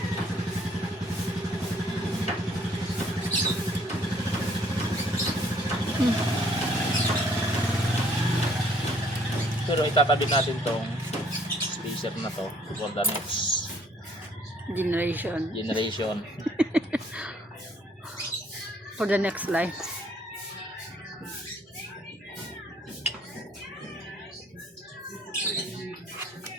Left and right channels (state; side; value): normal; both; correlation 0.62